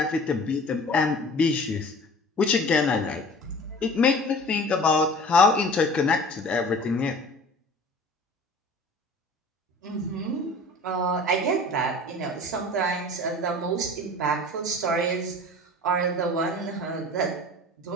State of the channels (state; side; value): normal; both; correlation 0.43